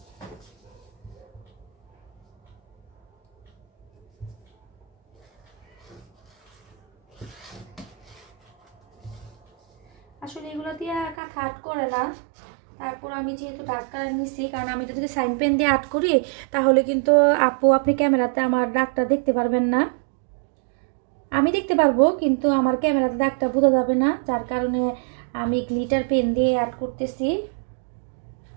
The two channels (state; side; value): drops out; left; at 11.2 s